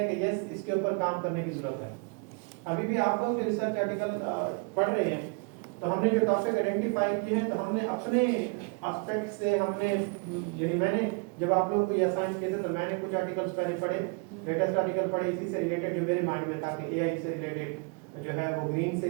कि यस इसके ऊपर काम करने की जरूरत है। अभी भी आप लोग जो रिसर्च आर्टिकल पढ़ रहे हैं तो हमने जो टॉपिक आइडेंटिफाई किए हैं तो हमने अपने एस्पेक्ट से हमने यानी मैंने जब आप लोग को ये असाइन किए थे तो मैंने कुछ आर्टिकल्स पहले पढ़े, लेटेस्ट आर्टिकल पढ़े इसी से रिलेटेड जो मेरे माइंड में था कि एआई से रिलेटेड जो है वो ग्रीन से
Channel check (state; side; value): quieter; left; 33.5 dB